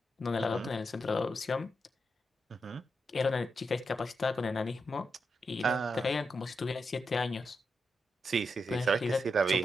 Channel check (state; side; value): normal; both; correlation 0.85